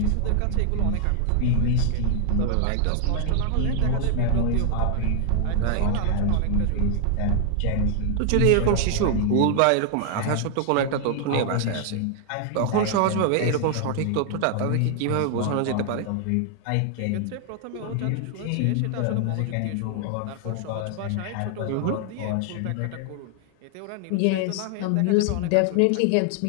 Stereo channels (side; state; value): both; different; correlation 0.00